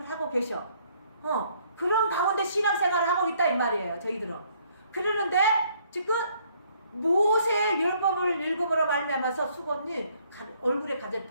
하고 계셔. 그런 가운데 신앙생활을 하고 있다 이 말이에요. 저희들은. 그러는데 지금 모세의 율법을 읽음으로 말미암아서 수건이 얼굴에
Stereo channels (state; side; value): inverted; both; correlation -0.65